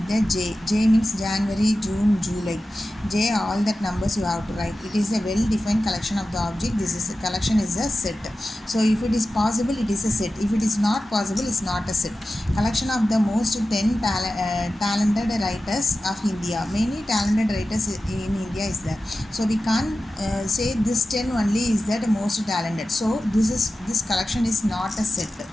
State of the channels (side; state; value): both; normal; correlation 0.94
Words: the J. J means January, June, July. J, all that numbers you have to write. It is a well defined collection of the object. This is a collection is a set. So if it is possible it is a set. If it is not possible it's not a set. Collection of the most 10 talented writers of India. Many talented writers in India is there. So we can't say this 10 only is that most talented. So this collection is not a set.